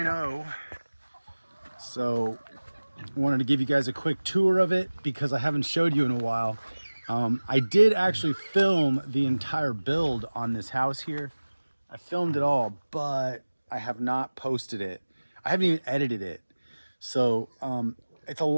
So I wanted to give you guys a quick tour of it because I haven't showed you in a while. I did actually film the entire build on this house here. I filmed it all, but I have not posted it. I haven't even edited it. So it's a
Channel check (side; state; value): both; inverted; correlation -1.00